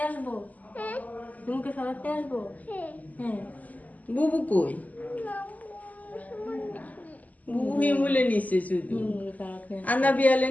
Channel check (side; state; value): right; late; 0.077 ms